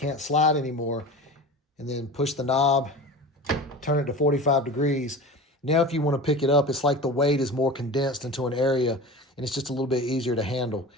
slide anymore, and then push the knob, turn it to 45 degrees. Now if you want to pick it up, it's like the weight is more condensed into an area, and it's just a little bit easier to handle.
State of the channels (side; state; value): both; normal; correlation 0.33